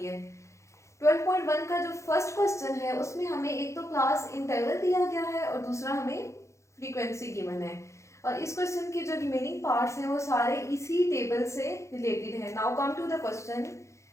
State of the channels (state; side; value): late; right; 0.14 ms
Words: है। 12.1 का जो फर्स्ट क्वेश्चन है उसमें हमें एक तो क्लास इंटरवल दिया गया है और दूसरा हमें फ्रीक्वेंसी गिवन है और इस क्वेश्चन के जो रिमेनिंग पार्ट्स हैं वो सारे इसी टेबल से रिलेटेड है। Now come to the question.